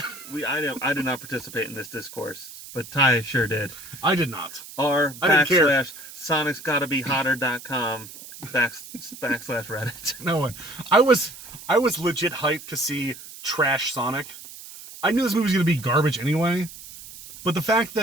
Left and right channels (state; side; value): noise; right; hiss, 15 dB below the sound